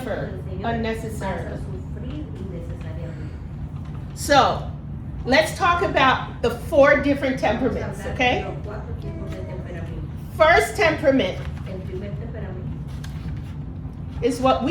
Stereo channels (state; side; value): identical; both; correlation 1.00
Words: unnecessarily. So, let's talk about the 4 different temperaments, okay? First temperament is what